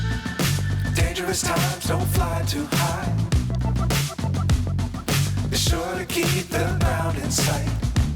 Times don't fly too high. Be sure to keep the ground in sight.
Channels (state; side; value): identical; both; correlation 1.00